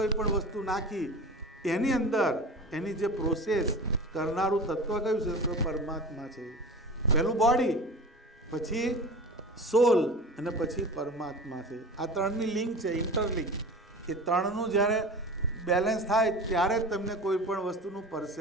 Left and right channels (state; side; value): normal; both; correlation 0.34